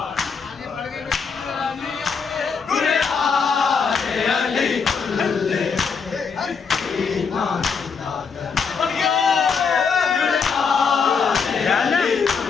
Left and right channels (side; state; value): right; quieter; 5.7 dB